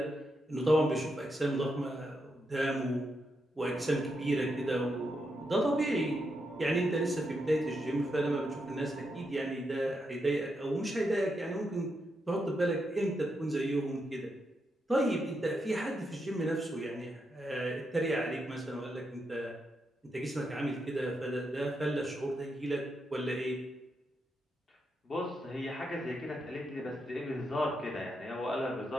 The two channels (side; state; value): both; normal; correlation 0.83